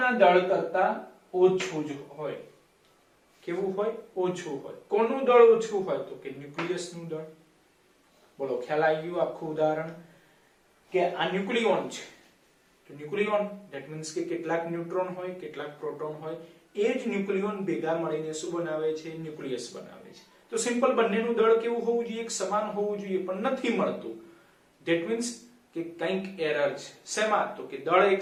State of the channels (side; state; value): both; identical; correlation 1.00